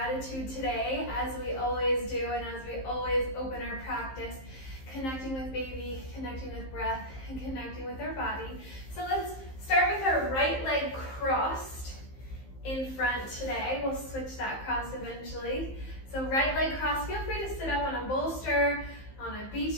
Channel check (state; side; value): late; right; 15 ms